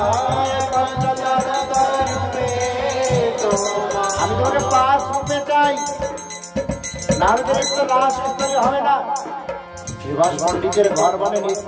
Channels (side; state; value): both; identical; correlation 1.00